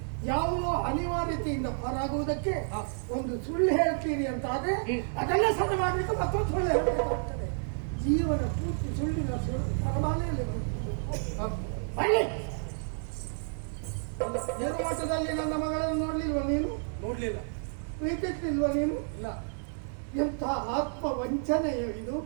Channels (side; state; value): left; silent; 58 dB below the other